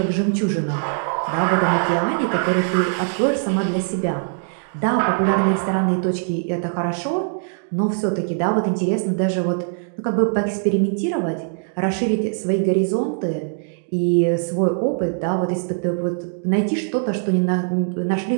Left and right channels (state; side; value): silent; left; digital silence